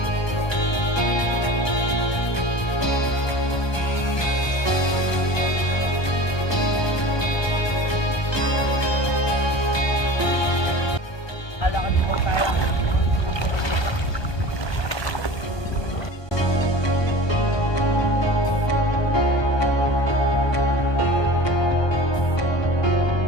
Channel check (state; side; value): late; right; 1.2 ms